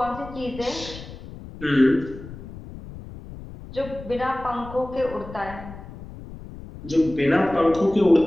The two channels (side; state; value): left; noise; rumble, 14 dB below the sound